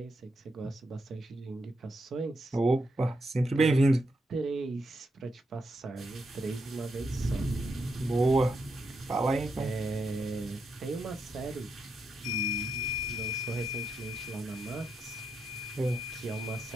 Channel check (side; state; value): both; normal; correlation 0.82